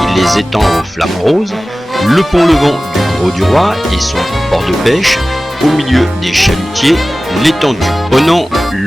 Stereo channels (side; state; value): both; normal; correlation 0.97